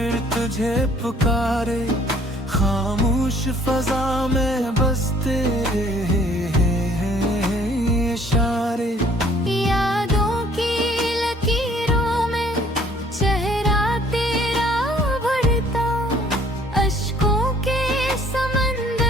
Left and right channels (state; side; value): normal; both; correlation 0.59